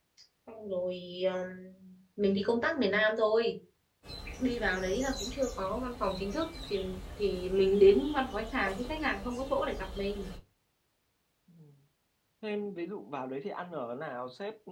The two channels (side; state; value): both; identical; correlation 1.00